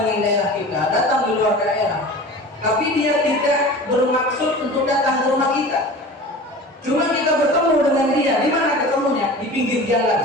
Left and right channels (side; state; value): both; normal; correlation 0.37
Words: dengan daerah kita, datang di luar daerah, tapi dia tidak bermaksud untuk datang ke rumah kita. Cuma kita bertemu dengan dia. Di mana ketemunya? Di pinggir